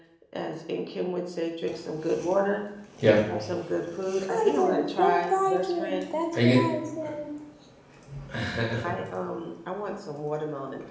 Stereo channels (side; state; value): both; identical; correlation 1.00